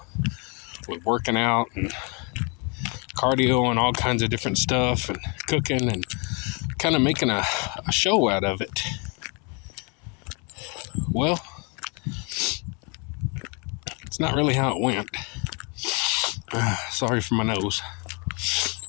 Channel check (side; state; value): right; quieter; 32.9 dB